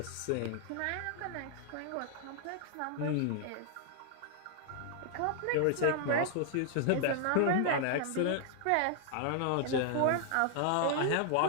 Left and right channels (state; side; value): different; both; correlation 0.00